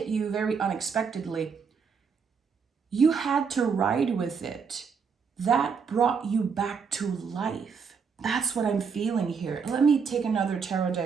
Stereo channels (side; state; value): left; quieter; 5.9 dB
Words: you very unexpectedly. You had to ride with it. That brought you back to life. That's what I'm feeling here. Let me take another tarot